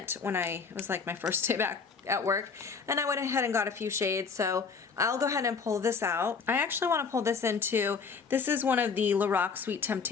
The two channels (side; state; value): right; quieter; 5.4 dB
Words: when it was like my first day back at work, and I went ahead and got a few shades, so I'll go ahead and pull this out. I actually want to pull this into, this is one of the Lorac Sweet